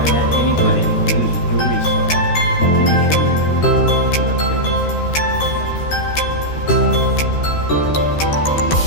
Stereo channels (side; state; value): right; late; 13 ms